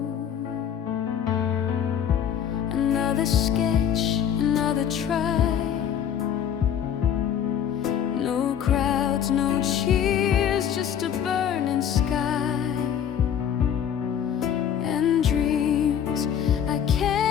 Another sketch, another try. No crowds, no cheers, just a burning sky. And dreams I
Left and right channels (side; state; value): right; quieter; 8.9 dB